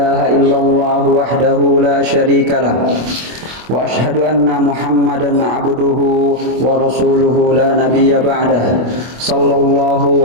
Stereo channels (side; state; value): left; late; 25 ms